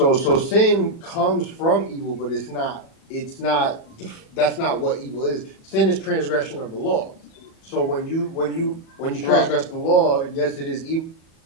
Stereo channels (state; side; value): late; right; 37 ms